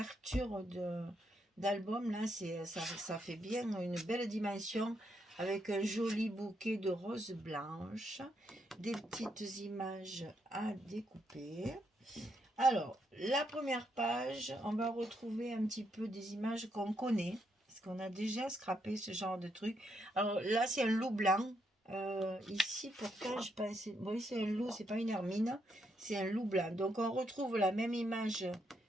d'album. Là, ça fait bien une belle dimension avec un joli bouquet de roses blanches, des petites images à découper. Alors, la première page, on va retrouver un petit peu des images qu'on connaît, parce qu'on a déjà scrappé ce genre de truc. Alors là, c'est un loup blanc. Ici, pourtant, je pense, oui, c'est un loup, c'est pas une hermine, c'est un loup blanc. Donc, on retrouve la même image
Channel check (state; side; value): normal; both; correlation 0.78